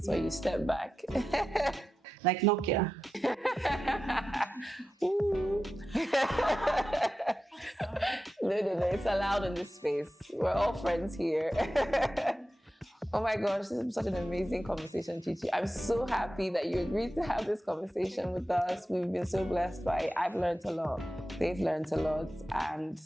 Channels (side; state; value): both; normal; correlation 0.91